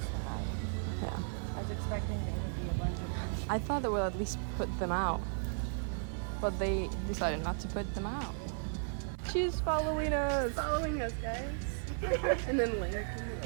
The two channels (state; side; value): silent; left; digital silence